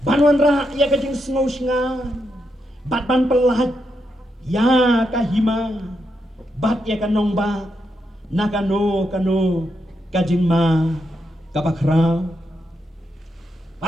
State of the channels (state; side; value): normal; both; correlation 0.82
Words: banwan ra ya kajing snow sngan bat ban pelat ya kahima bat ya kanong ba nakano kajing ma kabakra